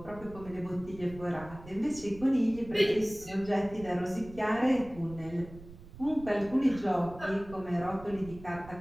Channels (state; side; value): noise; right; rumble, 17 dB below the sound